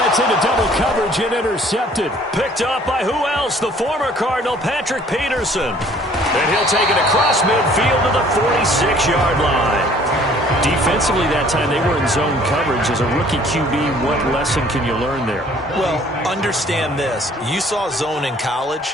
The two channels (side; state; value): both; normal; correlation 0.56